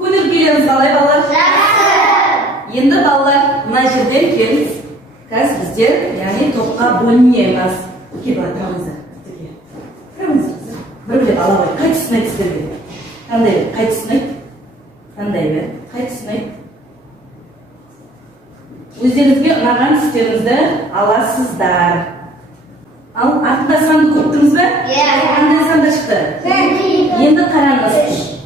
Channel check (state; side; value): normal; both; correlation 0.55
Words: келеміз қалай балалар? Енді балалар мына жерден келіңіз. Қазір біздер, яғни топқа бөлінеміз. Келіп тұрамыздар. Тұрамыздар. Бір-бірлеп ала қой. Қай тұсын айтсыздар бе? Қандай бе? Қай тұсын айт? Қандай бе? Қай тұсын айт? Өздеріңізге ұнаған түстеріңізді аласыздар. Ал артында санды көптіңіз бе? Қандай санда шықты? Енді қараңыз.